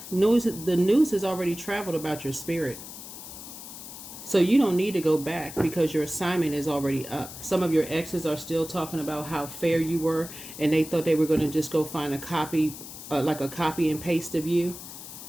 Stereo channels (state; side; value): noise; left; hiss, 13 dB below the sound